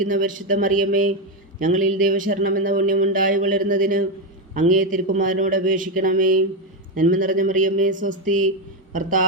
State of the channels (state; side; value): normal; both; correlation 0.08